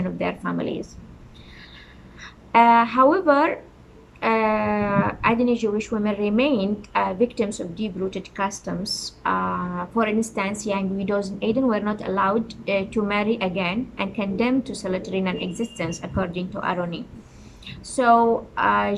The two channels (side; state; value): both; identical; correlation 1.00